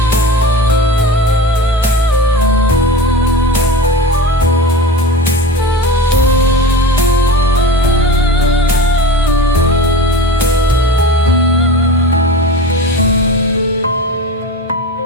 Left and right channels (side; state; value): both; normal; correlation 0.31